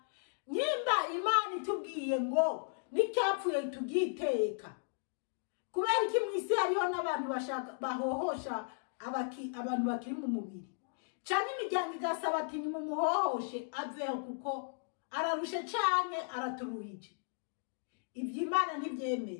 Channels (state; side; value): silent; right; digital silence